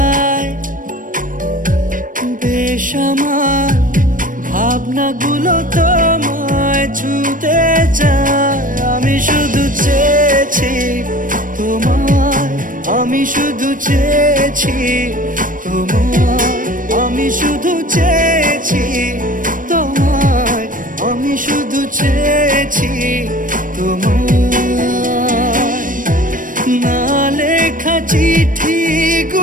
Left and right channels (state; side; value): late; left; 0.39 ms